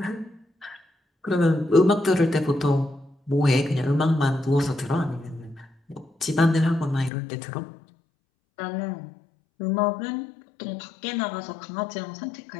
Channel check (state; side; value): drops out; right; at 7.1 s